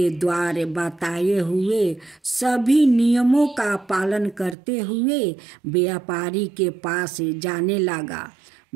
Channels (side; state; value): left; drops out; at 4.5 s